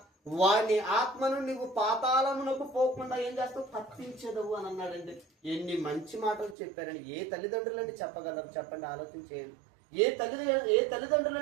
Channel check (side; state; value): left; drops out; at 6.6 s